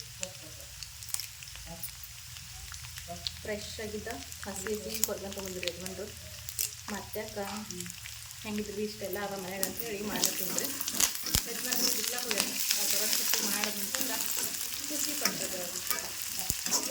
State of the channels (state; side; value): identical; both; correlation 1.00